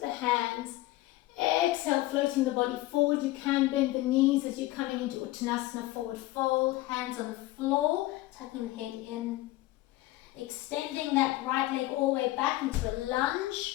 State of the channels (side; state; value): right; quieter; 17.7 dB